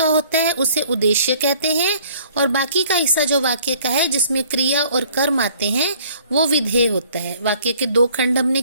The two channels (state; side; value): inverted; both; correlation -0.57